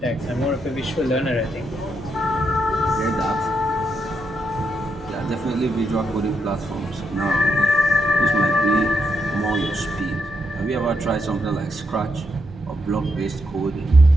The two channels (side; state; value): both; normal; correlation 0.80